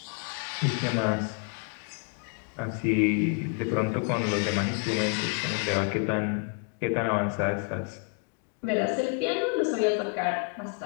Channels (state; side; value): quieter; right; 37.6 dB